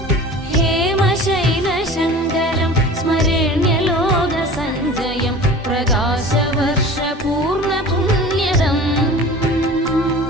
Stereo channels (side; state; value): both; normal; correlation 0.39